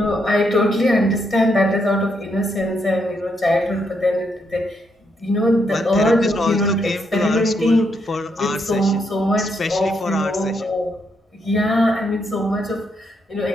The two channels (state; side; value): normal; both; correlation 0.78